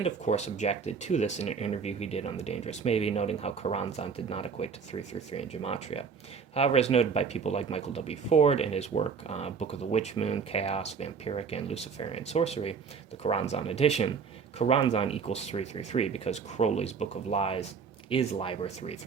of course, objected to this in an interview he did on The Dangerous Maybe, noting how Choronzon did not equate to 333 in Gematria. However, as noted by people like Michael W. Ford in his work Book of the Witch Moon, Chaos, Vampiric, and Luciferian Sorcery, the Choronzon edition, Choronzon equals 333 because Crowley's Book of Lies is Liber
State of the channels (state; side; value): quieter; left; 5.9 dB